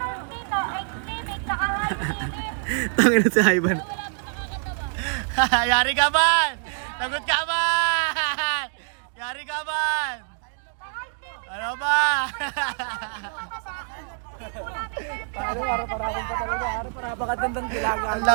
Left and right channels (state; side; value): silent; left; 62 dB below the other